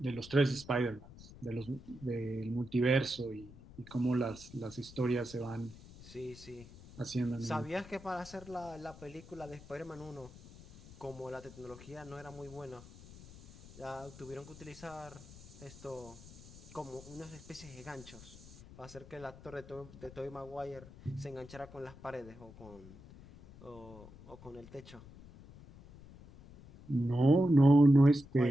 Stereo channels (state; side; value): noise; left; rumble, 18 dB below the sound